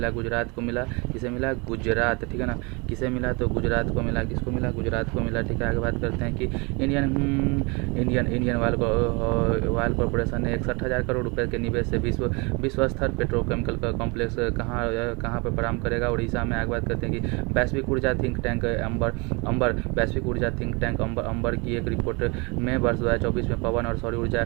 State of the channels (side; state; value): left; quieter; 29.1 dB